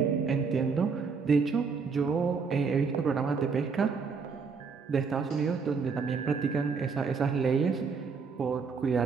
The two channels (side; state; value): left; quieter; 5.3 dB